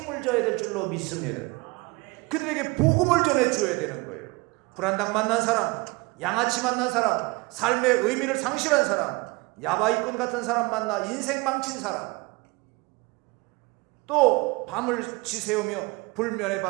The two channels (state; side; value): quieter; left; 25.4 dB